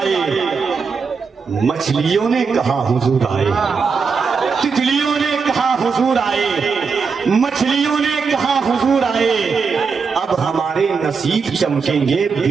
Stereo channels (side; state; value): left; quieter; 5.3 dB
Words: مچھلیوں نے کہا حضور آئے، تتلیوں نے کہا حضور آئے، مچھلیوں نے کہا حضور آئے، اب ہمارے نصیب چمکیں گے،